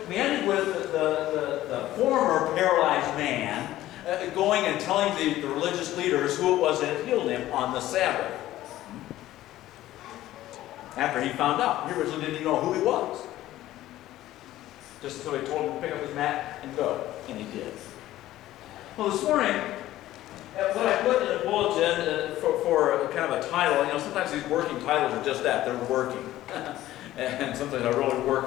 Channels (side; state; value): right; quieter; 14.7 dB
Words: We ended with the former paralyzed man going and telling the religious leaders who it was that had healed him on the Sabbath. After he found out. He originally didn't even know who he was. Just until he told him to pick up his mat and go. And he did. Well, this morning, what I put in the bulletin for kind of a title, sometimes these working titles are just that. They're working. And sometimes I really